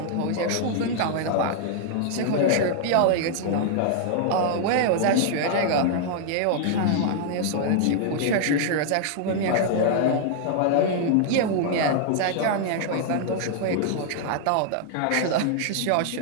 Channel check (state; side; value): different; both; correlation -0.01